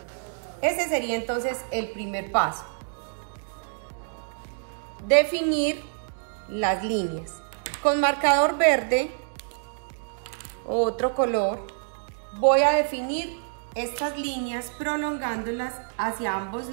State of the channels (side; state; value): left; silent; digital silence